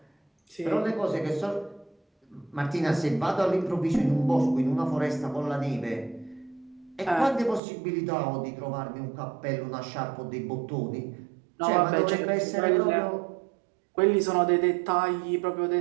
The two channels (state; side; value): drops out; left; at 7.6 s